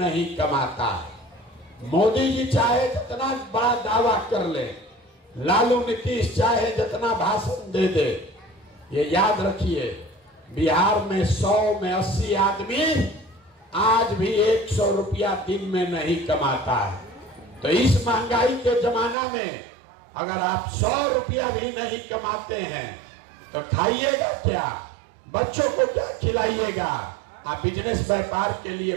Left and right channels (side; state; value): left; drops out; at 19.2 s